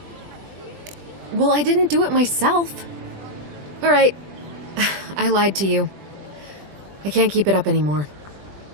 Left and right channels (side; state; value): left; late; 20 ms